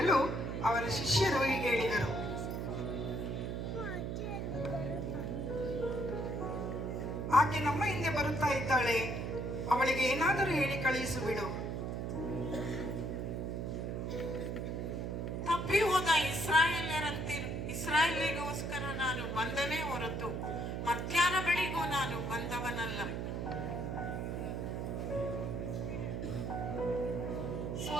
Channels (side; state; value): right; noise; hum, 3 dB below the sound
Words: ಅವರ ಶಿಷ್ಯರು ಹೀಗೆ ಹೇಳಿದರು, ಆಕೆ ನಮ್ಮ ಹಿಂದೆ ಬರುತ್ತಾ ಇದ್ದಾಳೆ, ಅವಳಿಗೆ ಏನಾದರೂ ಹೇಳಿ ಕಳುಹಿಸು ಬಿಡು. ತಪ್ಪಿ ಹೋದ ಇಸ್ರಾಯೇಲಿಗೋಸ್ಕರ ನಾನು ಬಂದನೇ ಹೊರತು ಮತ್ಯಾರ ಬಳಿಗೂ ನಾನು ಬಂದವನಲ್ಲ.